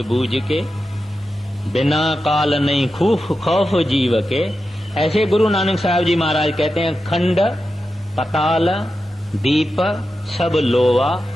के, बिना काल नहीं खौफ जीव के। ऐसे गुरु नानक साहब जी महाराज कहते हैं खंड पताल दीप सब लोवा,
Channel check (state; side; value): normal; both; correlation 0.90